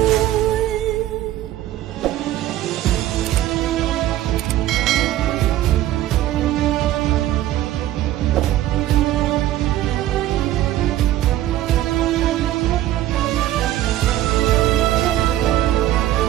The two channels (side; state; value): left; quieter; 13.7 dB